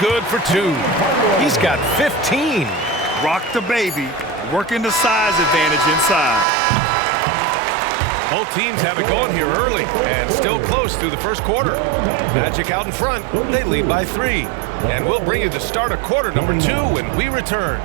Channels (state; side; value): drops out; left; at 6.5 s